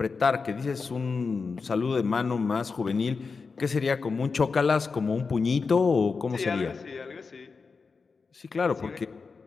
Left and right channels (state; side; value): quieter; right; 4.8 dB